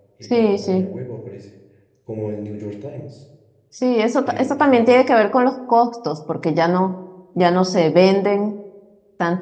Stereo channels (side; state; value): both; identical; correlation 1.00